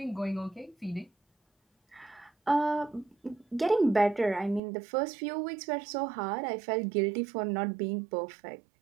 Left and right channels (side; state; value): left; drops out; at 4.6 s